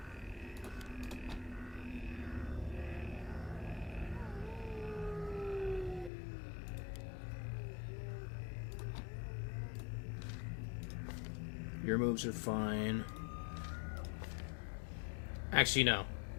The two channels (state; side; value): drops out; right; at 6.1 s